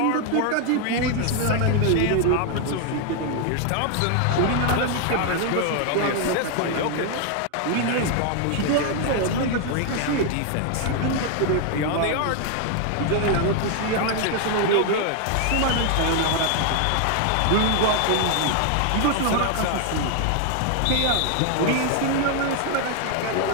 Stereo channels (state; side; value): different; both; correlation 0.00